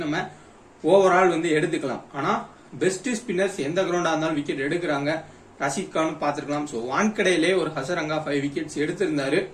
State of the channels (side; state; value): both; identical; correlation 1.00